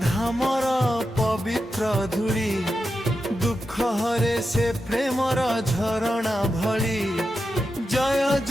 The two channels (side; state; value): both; normal; correlation 0.89